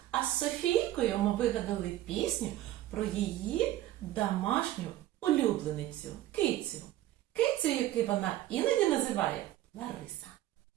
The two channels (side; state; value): left; quieter; 14.4 dB